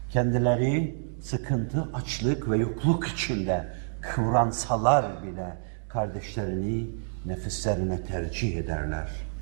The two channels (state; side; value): silent; left; digital silence